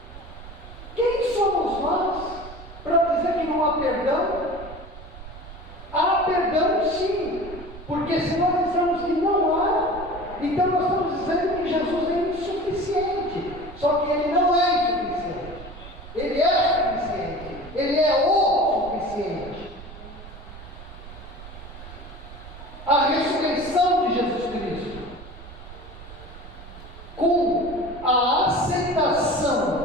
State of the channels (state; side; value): noise; right; rumble, 15 dB below the sound